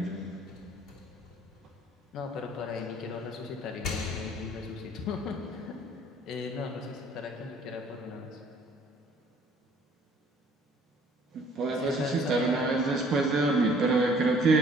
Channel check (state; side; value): normal; both; correlation 0.57